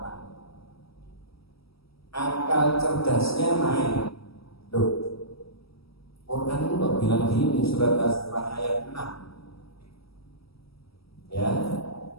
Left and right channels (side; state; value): right; late; 0.76 ms